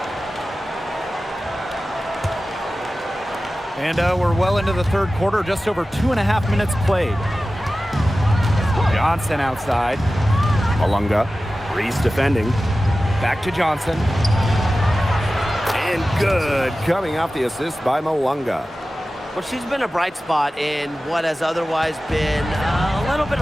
And we're well into the third quarter, just over 2.5 minutes played. Johnson outside. Malunga. Reese defending. Back to Johnson. And good. Coming off the assist by Malunga. Well, she's been a bright spot in what has otherwise been a little bit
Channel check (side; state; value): both; normal; correlation 0.95